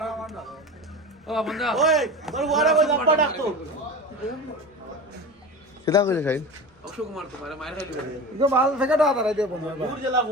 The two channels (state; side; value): normal; both; correlation 0.30